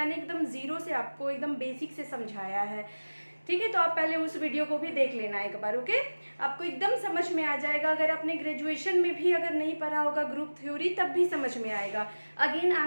एकदम जीरो से आपको एकदम बेसिक से समझाया है. ठीक है, तो आप पहले उस वीडियो को भी देख लेना एक बार. ओके, आपको एकदम समझ में आ जाएगा. अगर आपने ग्रेजुएशन में भी अगर नहीं पढ़ा होगा ग्रुप थ्योरी, तब भी समझ में आएगा. Again I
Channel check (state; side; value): inverted; both; correlation -1.00